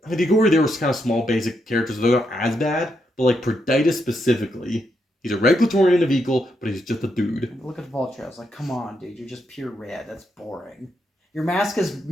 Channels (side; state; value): both; normal; correlation 0.80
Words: Agori, they were kind of small basic characters, so they're not as bad. But like Proditus specifically, he's a Regulatorian in a vehicle, but he's just a dude. Look at Voltraz, like, come on, dude, you're just pure red. That's boring. Your mask is